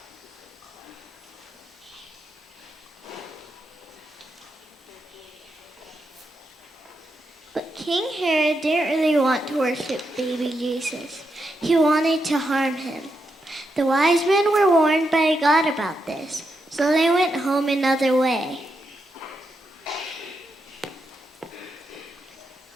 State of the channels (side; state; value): both; normal; correlation 0.84